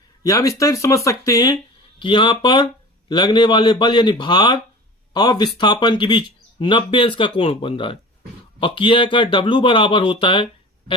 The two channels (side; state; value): both; normal; correlation 0.38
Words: या हम इस तरह समझ सकते हैं कि यहां पर लगने वाले बल यानी भार और विस्थापन के बीच 90 अंश का कोण बन रहा है। और किया का W बराबर होता है